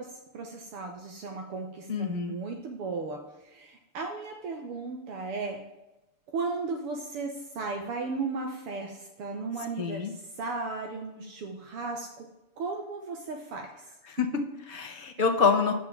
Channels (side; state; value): left; late; 6.9 ms